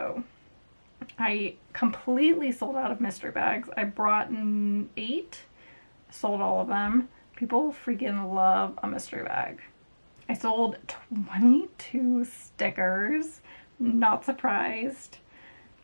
I completely sold out of mystery bags. I brought 8, sold all of them. People freaking love a mystery bag. I sold 22 stickers, not surprised.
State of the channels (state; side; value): inverted; both; correlation -1.00